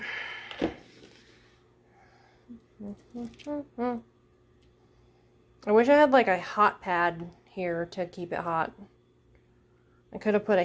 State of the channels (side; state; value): both; identical; correlation 1.00